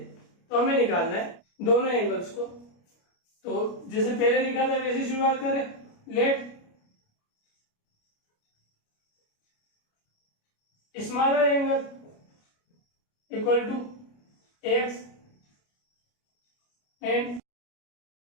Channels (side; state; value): right; late; 29 ms